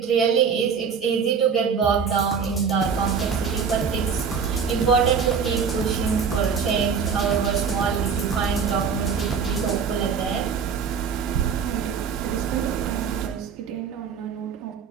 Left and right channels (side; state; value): left; quieter; 6.3 dB